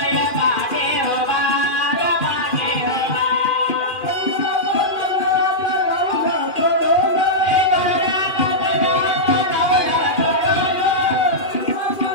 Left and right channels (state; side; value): late; right; 2.4 ms